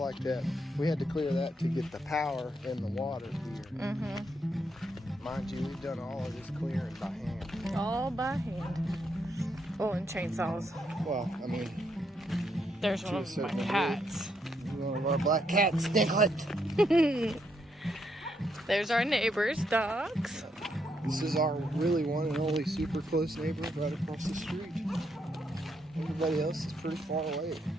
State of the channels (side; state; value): both; normal; correlation 0.77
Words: like that. We had to clear that to get the power and the water here. Mind you, we've done all of this clearing by hand. All by hand. Oh, and chainsaws. Well, I mean, There's To one a of my certain degree. cats. one of our black cats, Stinklet. There's our neighbor's dogs. This is our really one and only super close neighbor right across the street. Everybody else is pretty far away,